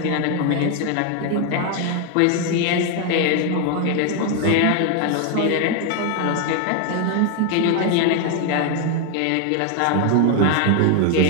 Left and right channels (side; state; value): both; different; correlation 0.01